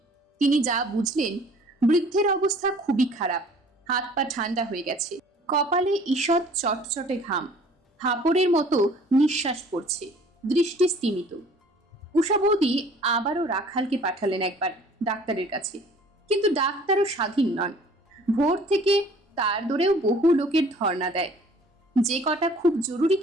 তিনি যা বুঝলেন, বৃদ্ধের অবস্থা খুবই খারাপ। হাত পা ঠান্ডা হয়ে গেছে, কপালে ঈষৎ চটচটে ঘাম, হাঁপড়ের মতো নিঃশ্বাস পড়ছে, দৃষ্টি স্তিমিত। উষা বৌদি আবারও রাখালকে পাঠালেন একবার ডাক্তারের কাছে, কিন্তু ডাক্তারও স্বাধীন নন। ভোর থেকে তার দৌড়েও বহু লোকের ধর্ণা দেয়। যে কটা খুব জরুরি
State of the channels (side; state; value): both; normal; correlation 0.52